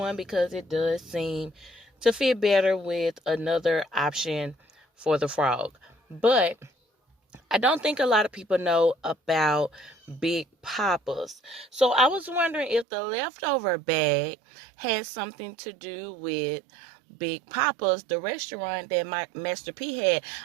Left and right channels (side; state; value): left; drops out; at 12.9 s